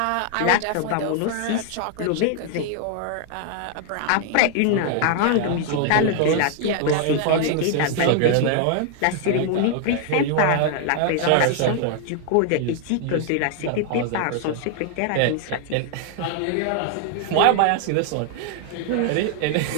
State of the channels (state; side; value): different; both; correlation 0.00